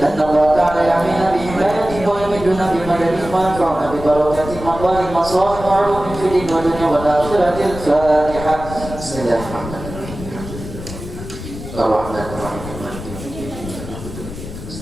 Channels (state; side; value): noise; left; rumble, 11 dB below the sound